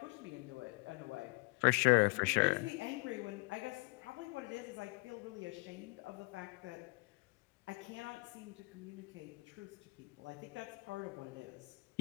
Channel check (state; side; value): quieter; right; 27.3 dB